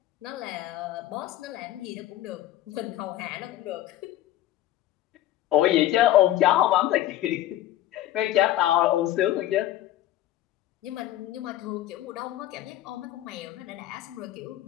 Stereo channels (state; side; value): quieter; right; 13.8 dB